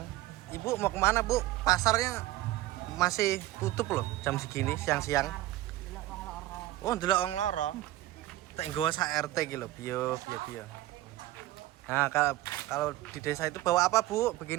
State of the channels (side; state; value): left; quieter; 16.1 dB